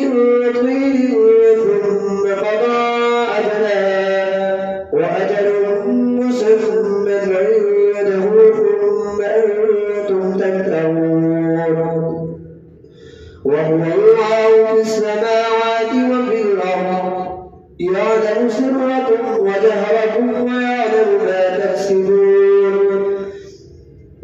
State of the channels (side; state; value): both; identical; correlation 1.00